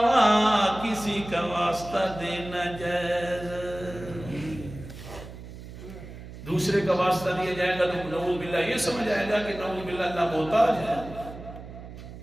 کسی کا واسطہ دینا جائز ہے۔ دوسرے کا واسطہ دیا جائے گا تو نعوذ باللہ یہ سمجھ آئے گا کہ نعوذ باللہ اللہ محتاج ہے۔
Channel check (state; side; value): noise; right; hum, 13 dB below the sound